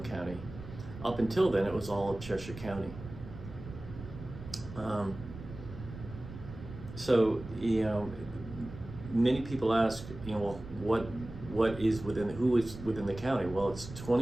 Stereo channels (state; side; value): noise; right; rumble, 13 dB below the sound